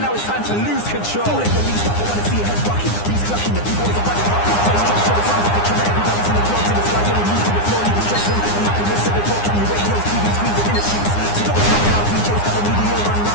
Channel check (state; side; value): late; right; 9.8 ms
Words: it's time to lose control. Don't let your knees stop, I wanna see your head rocking. Beats clucking, the B-boys are running up. Face structure, it sounds like a killer. Everybody's in the clubs, in the sky, getting used to the floor, even stressing. I'm not gonna listen to talk on your radios, TV screens, and in the sheets. So don't stop now, DJs got the media run